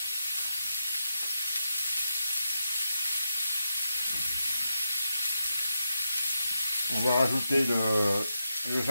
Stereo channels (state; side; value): inverted; both; correlation -0.85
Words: On va rajouter le